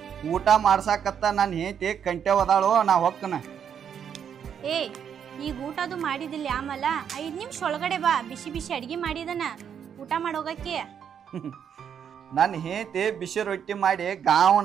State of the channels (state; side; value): quieter; left; 8.1 dB